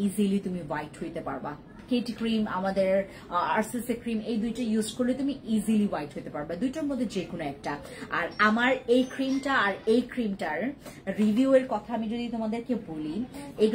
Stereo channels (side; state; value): both; identical; correlation 1.00